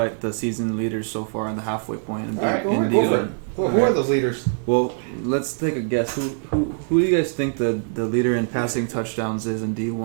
the season leaders so far in the halfway point. All right, go in for it. D1. Who are those leaders? Well, let's take a guess. Who do you guys think the leader in passing touchdowns is in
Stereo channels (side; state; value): left; silent; digital silence